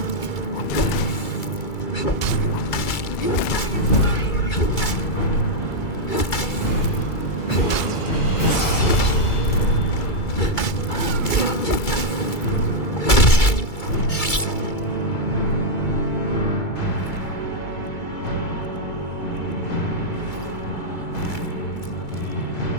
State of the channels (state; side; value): late; right; 2.3 ms